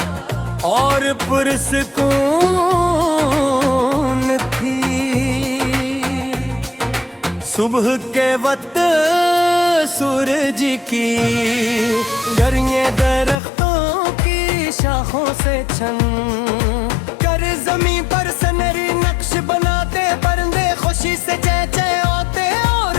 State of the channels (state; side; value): drops out; right; at 13.4 s